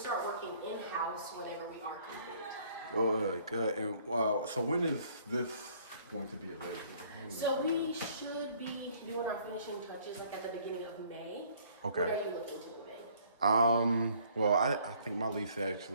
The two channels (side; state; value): both; inverted; correlation -0.60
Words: working in-house whenever we are complete. Good. And so when is this going to be available? So we should be doing our finishing touches at the beginning of May. Okay. What are you looking to move in? Well, I think my lease